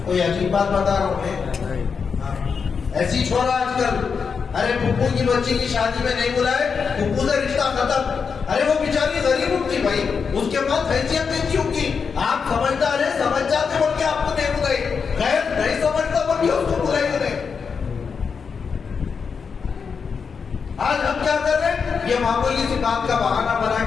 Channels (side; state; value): right; quieter; 5.8 dB